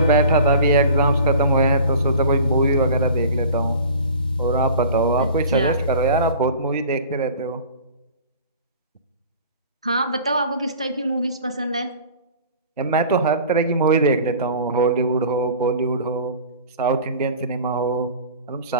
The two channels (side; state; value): both; inverted; correlation -0.43